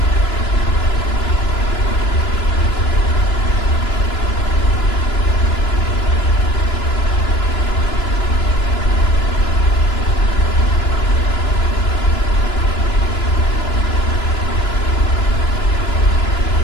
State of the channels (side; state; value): right; late; 2.9 ms